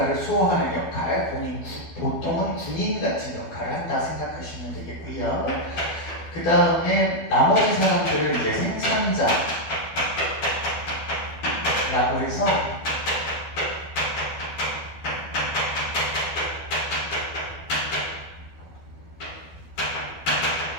수호하는 역할, 보통은 군인 같은 역할을 한다 생각하시면 되겠고요. 그 다음에 나머지 사람들은 이제 생산자라고 해서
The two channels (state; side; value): late; right; 12 ms